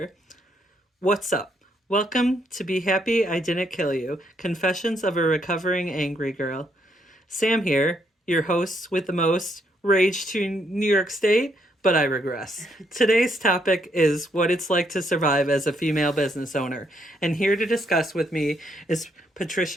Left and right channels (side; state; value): both; normal; correlation 0.74